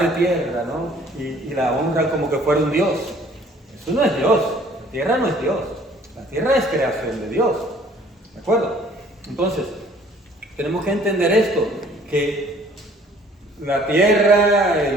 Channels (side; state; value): both; normal; correlation 0.56